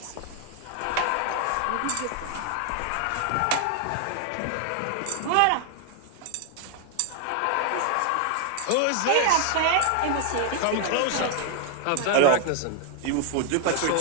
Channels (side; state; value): both; different; correlation 0.00